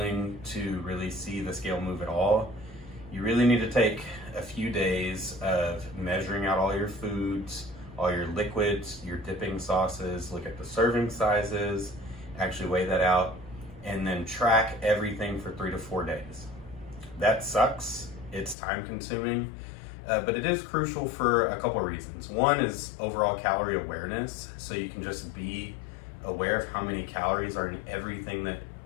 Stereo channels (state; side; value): drops out; right; at 18.6 s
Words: to really see the scale move at all, you really need to take a few days of measuring out all your foods, all your liquids, your dipping sauces, look at the serving sizes, actually weigh that out, and then track everything for 3 to 4 days. That sucks. It's time consuming, but it is crucial for a couple of reasons. One is overall calorie awareness, so you can just be aware of how many calories are in everything that